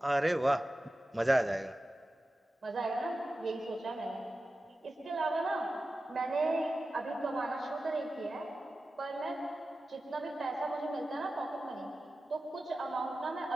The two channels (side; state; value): both; normal; correlation 0.94